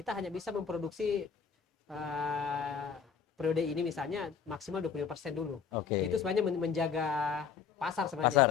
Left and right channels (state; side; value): quieter; right; 6.7 dB